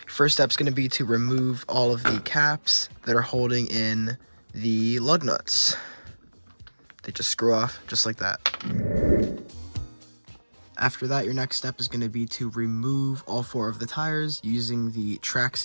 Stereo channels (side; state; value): both; inverted; correlation -1.00